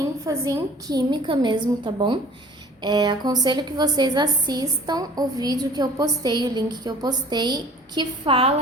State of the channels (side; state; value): both; normal; correlation 0.48